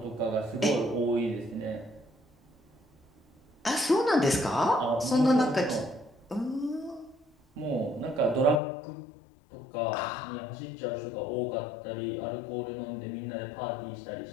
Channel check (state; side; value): drops out; right; at 8.6 s